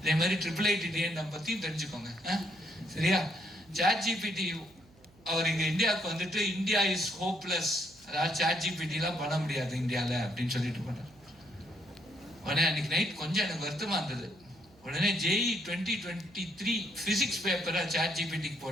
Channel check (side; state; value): right; noise; hum, 27 dB below the sound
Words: இதே மாதிரி IIIT பத்தியும் தெரிஞ்சுக்கோங்க. சரியா? ChatGPT அவர் இங்க இந்தியாவுக்கு வந்துட்டு இந்தியா இஸ் ஹோப்லெஸ், அதாவது ChatGPT எல்லாம் பண்ண முடியாது இந்தியால அப்படின்னு சொல்லிட்டு போனார். உடனே அன்னைக்கு நைட் கொஞ்சம் எனக்கு வருத்தமா இருந்தது. உடனே JEE 2023 பிசிக்ஸ் பேப்பரை ChatGPTக்கு